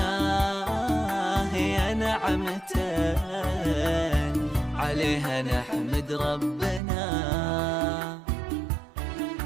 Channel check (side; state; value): left; drops out; at 6.8 s